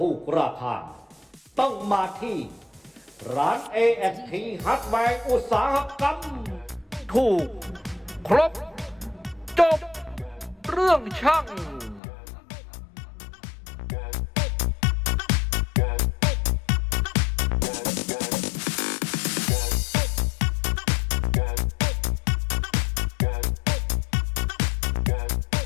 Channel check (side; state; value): right; drops out; at 12.0 s